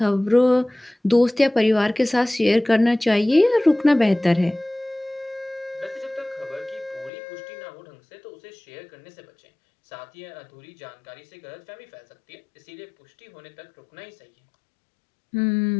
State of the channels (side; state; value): right; drops out; at 7.1 s